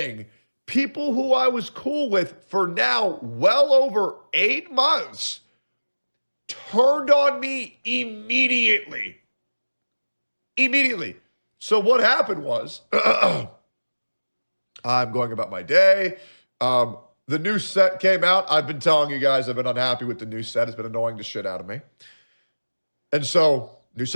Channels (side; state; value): both; inverted; correlation -1.00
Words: people who I was cool with for now well over 8 months turned on me immediately. Immediately. So what happened was, I'm going about my day. The new set came out. I've been telling you guys I've been unhappy with the new set. It's been annoying the shit out of me. And so, new